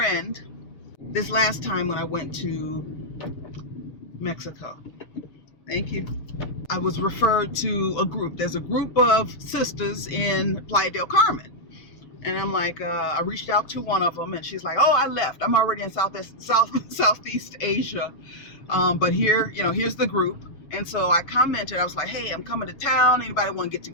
this last time when I went to Mexico. Thank you. I was referred to a group. There's a group of sisters in Playa del Carmen. And I'm like, I reached out to one of them, and she's like, oh, I left. I'm already in Southeast Asia. But here, you know, here's the group. And so I commented, I was like, hey, I'm coming to town. Anybody want to get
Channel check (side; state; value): right; late; 6.8 ms